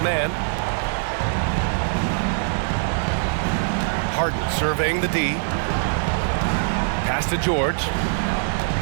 Harden surveying the D. Pass to George.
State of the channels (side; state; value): left; silent; 64 dB below the other